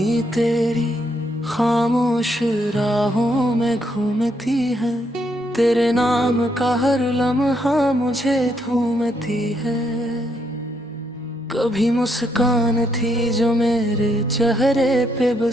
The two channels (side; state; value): both; normal; correlation 0.75